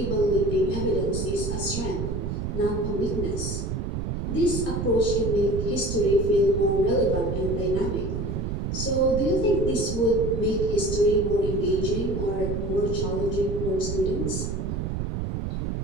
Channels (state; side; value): noise; right; rumble, 2 dB below the sound